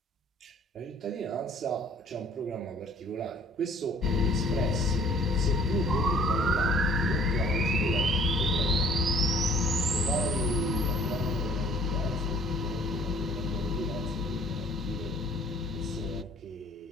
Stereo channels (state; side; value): normal; both; correlation 0.54